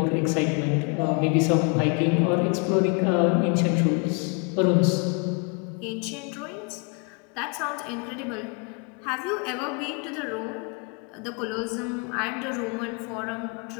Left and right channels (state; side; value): quieter; right; 35.3 dB